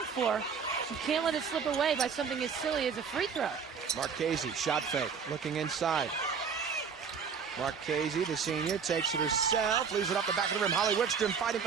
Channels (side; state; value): left; quieter; 6.3 dB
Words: for. You can't let it slip away by something as silly as a free throw. Marchese, shot fake, looking inside. Marchese, the senior, takes it herself, leaves it up the back of the rim. Holly Wickstrom fighting for